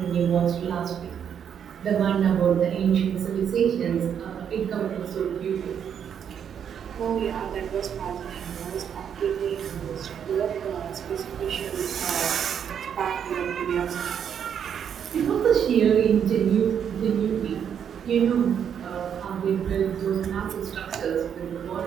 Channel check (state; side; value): quieter; left; 8.2 dB